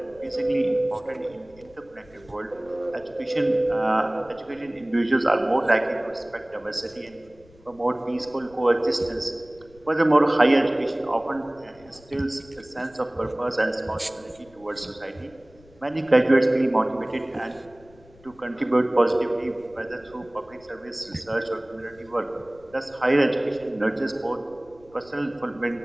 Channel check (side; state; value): left; noise; rumble, 26 dB below the sound